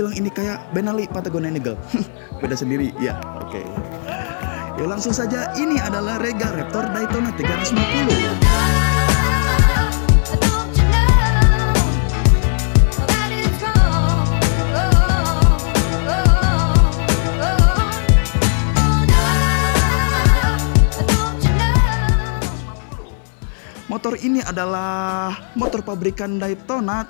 ini kayak Benelli Patagonia Eagle. Beda sendiri, ya oke. Ya langsung saja, ini adalah Rega Raptor Daytona 350. Motor ini adalah motor pabrikan Daytona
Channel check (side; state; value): right; silent; 58 dB below the other